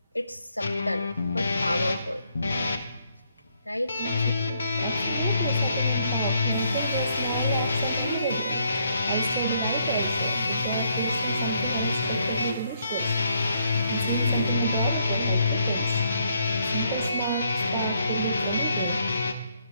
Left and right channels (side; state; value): both; inverted; correlation -0.72